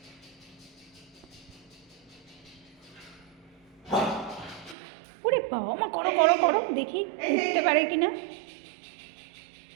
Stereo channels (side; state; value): left; drops out; at 4.8 s